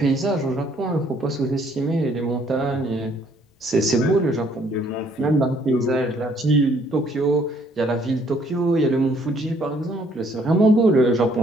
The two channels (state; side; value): normal; both; correlation 0.64